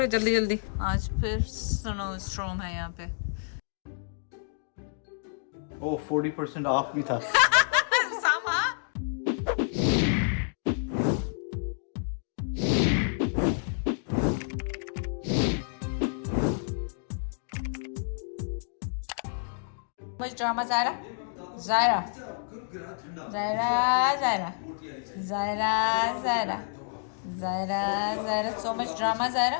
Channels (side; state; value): right; silent; digital silence